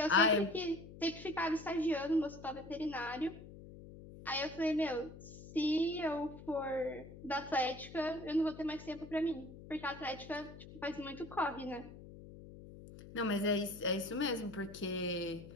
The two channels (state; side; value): noise; left; hum, 15 dB below the sound